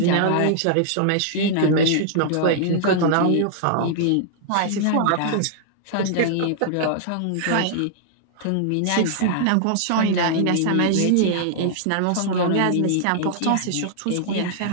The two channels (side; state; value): both; different; correlation -0.01